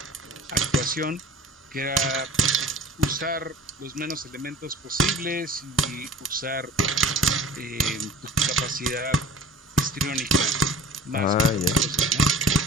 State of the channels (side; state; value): both; normal; correlation 0.43